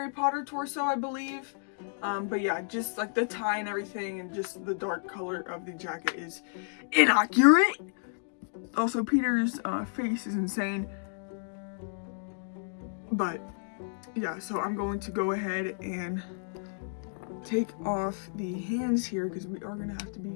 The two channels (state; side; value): silent; right; digital silence